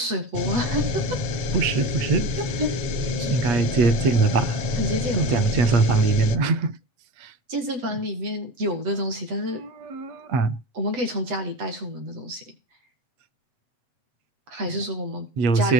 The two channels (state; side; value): late; left; 8.0 ms